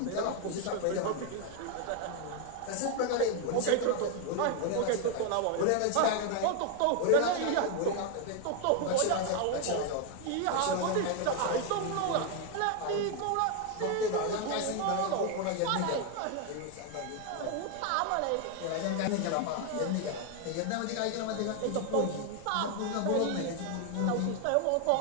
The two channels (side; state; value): both; different; correlation 0.01